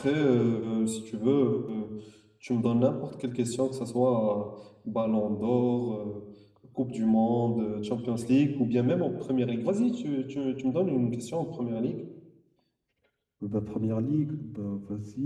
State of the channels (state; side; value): identical; both; correlation 1.00